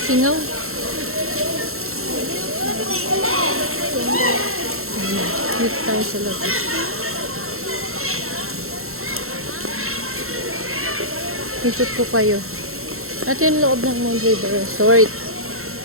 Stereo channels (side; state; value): left; late; 0.62 ms